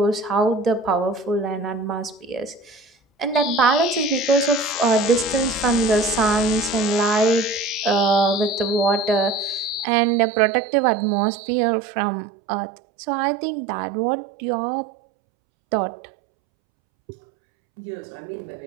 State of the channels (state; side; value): drops out; left; at 9.9 s